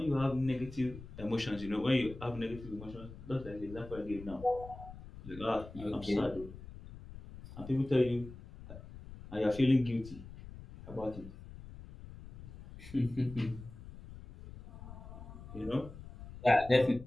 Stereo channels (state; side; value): noise; left; rumble, 14 dB below the sound